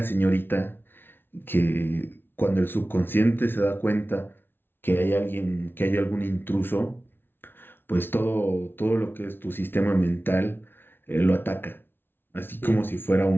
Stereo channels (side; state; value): right; late; 0.10 ms